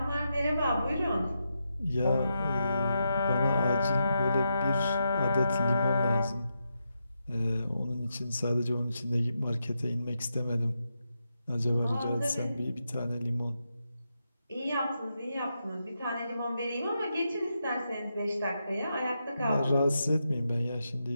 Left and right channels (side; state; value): both; inverted; correlation -0.85